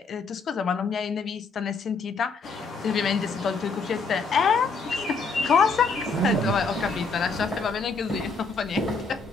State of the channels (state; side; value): quieter; right; 4.3 dB